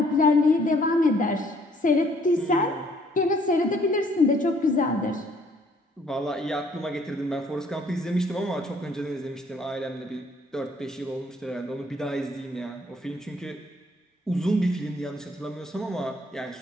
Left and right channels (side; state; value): both; normal; correlation 0.63